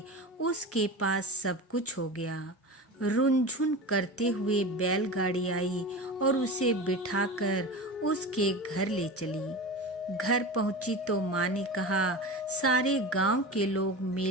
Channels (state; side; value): normal; both; correlation 0.29